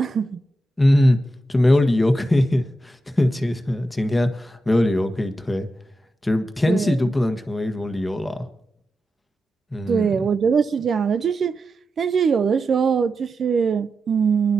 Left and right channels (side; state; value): both; normal; correlation 0.89